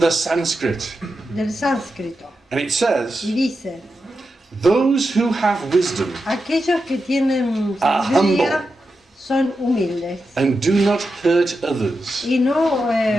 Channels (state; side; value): normal; both; correlation 0.89